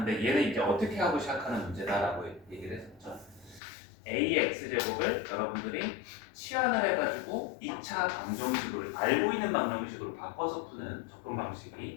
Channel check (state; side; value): drops out; right; at 3.6 s